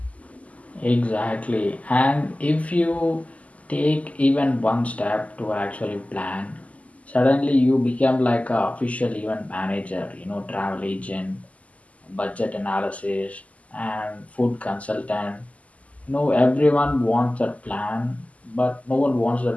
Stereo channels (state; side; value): late; right; 0.070 ms